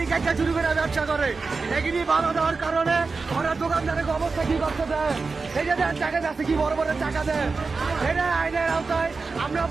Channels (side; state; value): left; quieter; 4.3 dB